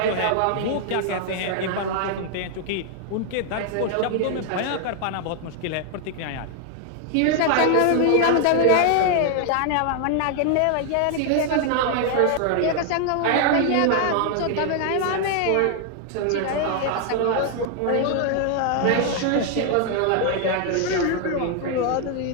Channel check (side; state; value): both; different; correlation 0.00